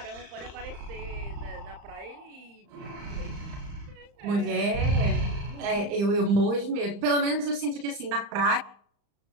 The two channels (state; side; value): late; left; 35 ms